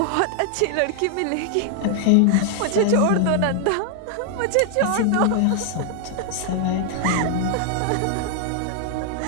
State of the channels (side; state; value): both; different; correlation 0.00